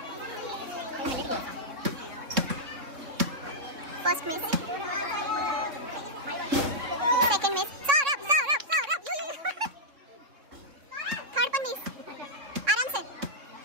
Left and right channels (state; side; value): late; left; 3.6 ms